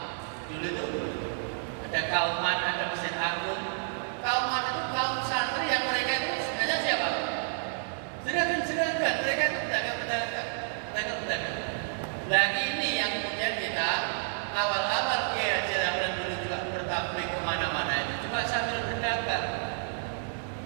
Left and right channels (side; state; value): left; silent; digital silence